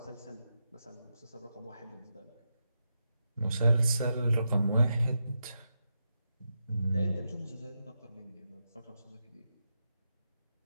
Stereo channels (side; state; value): both; inverted; correlation -0.86